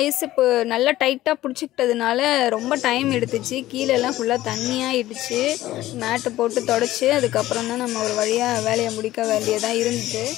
ஐஸ் இப்போ நல்லா டைட்டாக பிடிச்சிக்கிட்டதுனால ரொம்ப டைம் எடுத்துச்சு. கீழெல்லாம் ஃபுல்லாக தண்ணியாகிடுச்சு. மேட்டு போட்டு தொடச்சி அதுக்கப்புறம் தான் நம்ம ஒரு வழியாக வேலையை முடிக்க வேண்டியதாக இருந்துச்சு.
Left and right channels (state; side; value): quieter; right; 15.3 dB